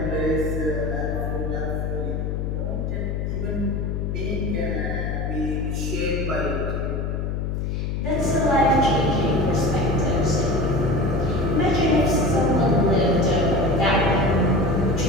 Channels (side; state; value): left; noise; hum, 2 dB below the sound